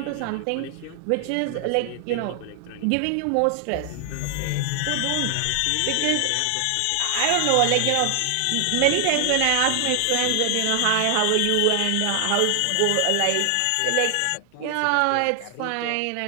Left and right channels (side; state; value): both; different; correlation 0.00